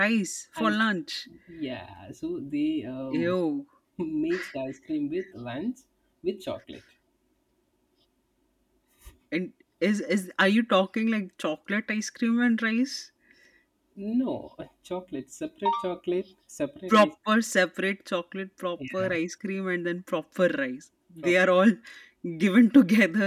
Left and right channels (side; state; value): both; identical; correlation 1.00